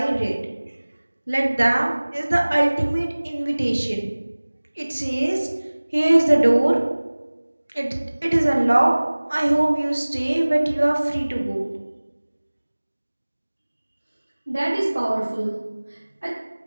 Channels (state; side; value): inverted; both; correlation -1.00